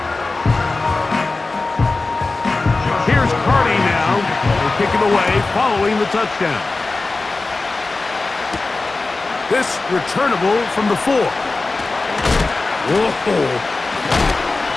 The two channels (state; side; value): quieter; right; 3.5 dB